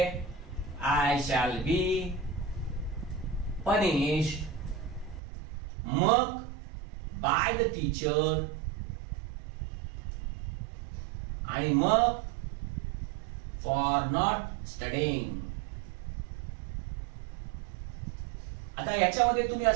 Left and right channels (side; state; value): left; drops out; at 5.2 s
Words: आय शॅल बी पनिश्ड, मग बाय द टीचर, आणि मग फॉर नॉट स्टडिंग. आता याच्यामध्ये तुम्ही